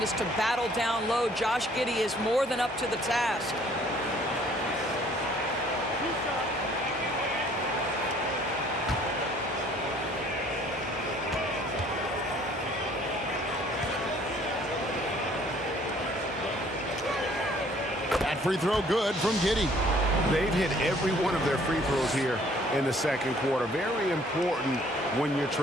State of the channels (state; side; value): normal; both; correlation 0.58